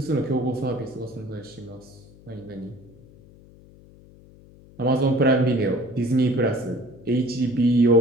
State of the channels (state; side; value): noise; left; hum, 24 dB below the sound